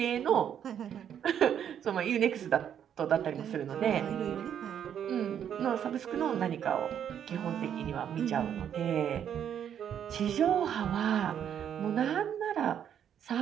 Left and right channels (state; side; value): quieter; left; 9.1 dB